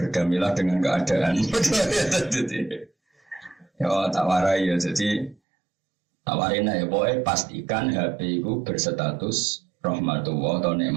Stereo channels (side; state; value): left; drops out; at 5.4 s